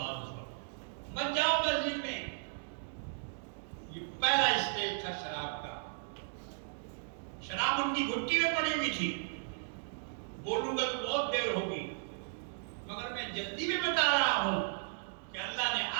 مت جاؤ مسجد میں۔ یہ پہلا اسٹیج تھا شراب کا۔ شراب ان کی گھٹی میں پڑی ہوئی تھی۔ بولوں گا تو بہت دیر ہوگی، مگر میں جلدی میں بتا رہا ہوں کہ اللہ نے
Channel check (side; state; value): left; silent; digital silence